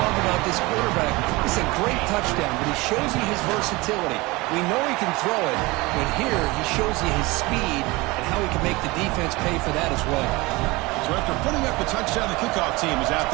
about this quarterback. It's a great touchdown, but he shows you his versatility. We know he can throw it, but here he shows you his speed and how he can make the defense pay for that as well. So after putting up the touchdown, the kickoff team is out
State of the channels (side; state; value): left; quieter; 22.9 dB